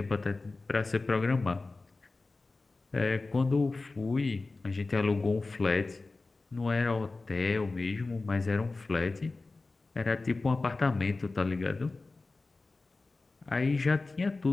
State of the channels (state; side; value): quieter; right; 3.5 dB